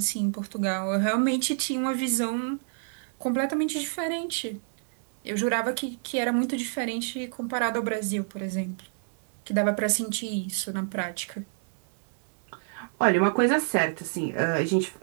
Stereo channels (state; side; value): silent; left; digital silence